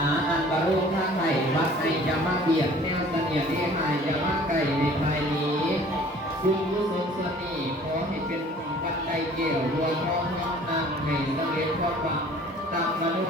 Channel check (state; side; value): normal; both; correlation 0.51